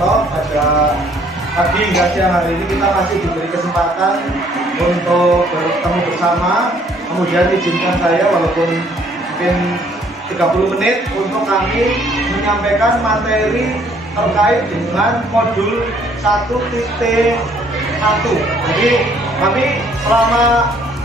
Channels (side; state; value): both; normal; correlation 0.62